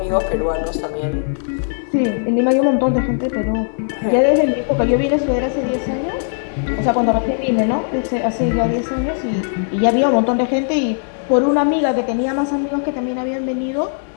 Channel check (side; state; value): right; silent; digital silence